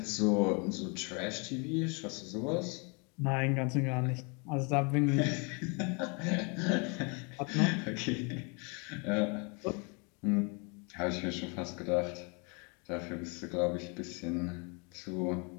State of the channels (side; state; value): right; quieter; 33.1 dB